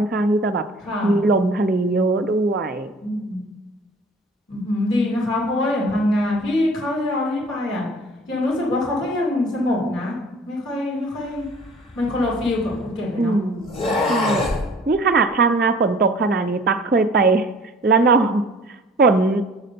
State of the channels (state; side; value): normal; both; correlation 0.49